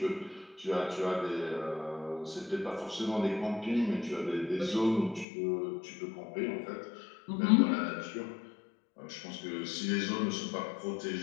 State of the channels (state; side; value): drops out; right; at 5.2 s